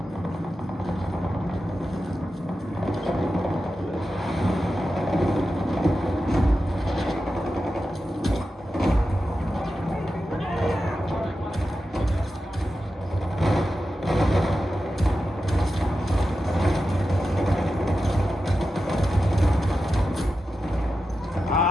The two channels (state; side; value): normal; both; correlation 0.91